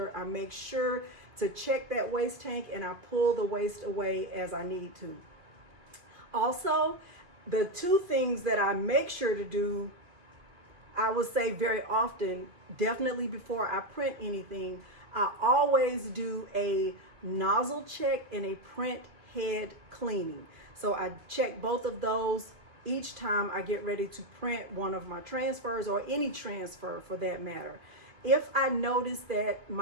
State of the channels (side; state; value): left; late; 2.5 ms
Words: I make sure to check that waste tank, and I pull the waste away as I need to. Also, the 2 things that I make sure to do, I would say very often, definitely before I print anything, I always do a nozzle check and a print head cleaning. So I check both of those each time I get ready to print one of my transfers, or any transfer for that matter. If I notice that